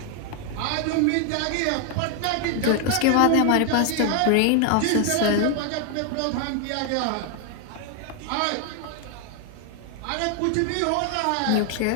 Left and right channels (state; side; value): different; both; correlation 0.00